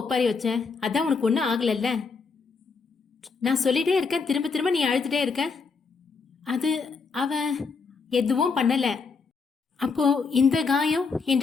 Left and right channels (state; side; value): quieter; right; 4.8 dB